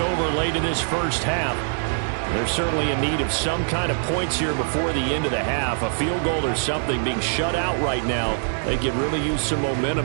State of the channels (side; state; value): left; silent; 63 dB below the other